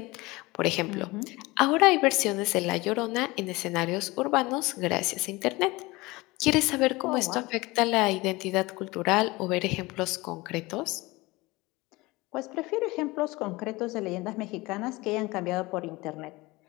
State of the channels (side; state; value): right; quieter; 22.0 dB